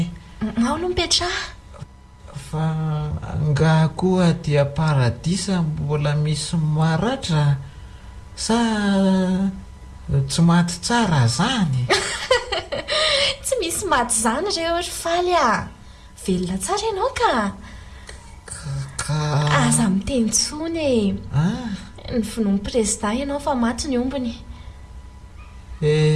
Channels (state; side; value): identical; both; correlation 1.00